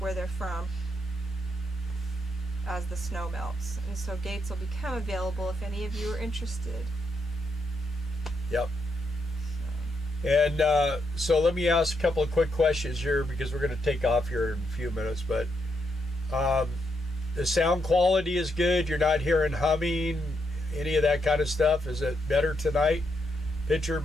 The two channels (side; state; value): both; normal; correlation 0.80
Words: they're from as the snow melts. And so gates will become available if any of you are interested. Yep. And so let me ask a couple of quick questions here because we're going to take off here in a few minutes. But the sound quality is good. You're not hearing humming, any of that kind of stuff. Is it better tonight? Picture